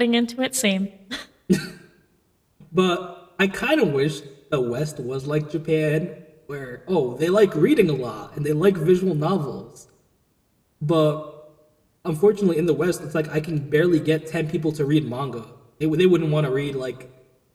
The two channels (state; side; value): identical; both; correlation 1.00